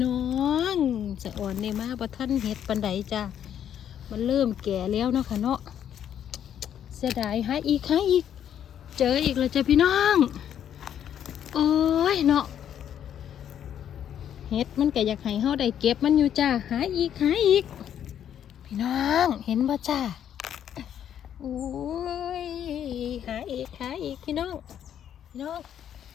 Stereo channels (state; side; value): quieter; right; 9.7 dB